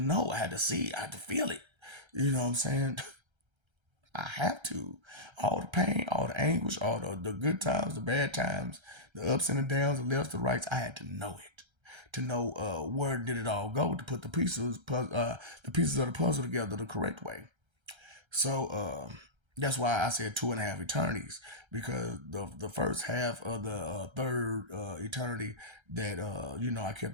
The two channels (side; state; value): left; late; 1.3 ms